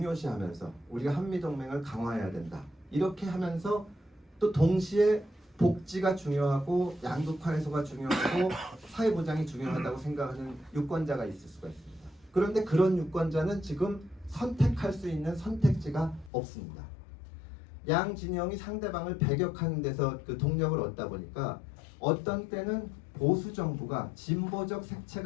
우리가 한미동맹을 강화해야 된다. 이렇게 하면서 또 동시에 복지가 중요하고 양극화 해소가 중요하고 사회보장이 중요하다고 생각하는 유권자가 있을 수가 있습니다. 그런데 그런 유권자는 지금 선택할 수 있는 선택지가 없습니다. 양 진영이 상대방을 배격하는 데서 그 동력을 얻다 보니까 어떤 때는 보수 정부가 진보적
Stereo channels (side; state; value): right; drops out; at 16.3 s